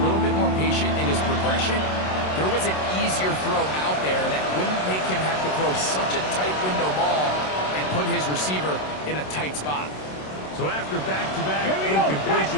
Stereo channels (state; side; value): late; right; 27 ms